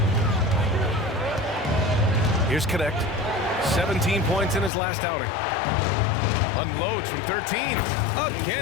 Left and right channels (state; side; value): drops out; right; at 4.7 s